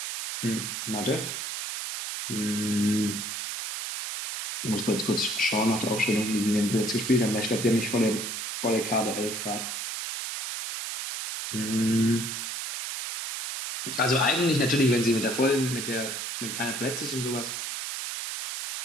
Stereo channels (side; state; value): right; noise; hiss, 5 dB below the sound